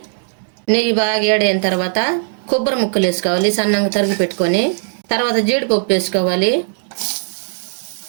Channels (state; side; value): silent; left; digital silence